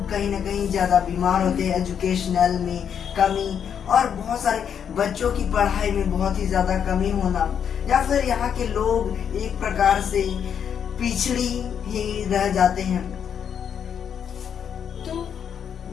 कहीं ना कहीं ज्यादा बीमार होते हैं। एजुकेशनल में कमी और बहुत सारे बच्चों की पढ़ाई में बहुत ही ज्यादा कमी होना, या फिर यहाँ के लोग एक प्रकार से पिछड़ी ही रह जाते हैं। तो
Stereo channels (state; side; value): quieter; right; 8.0 dB